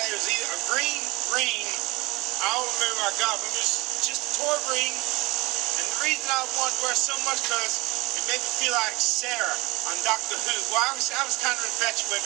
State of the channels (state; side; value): quieter; left; 23.0 dB